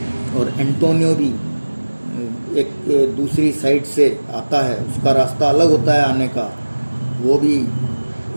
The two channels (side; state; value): both; inverted; correlation -1.00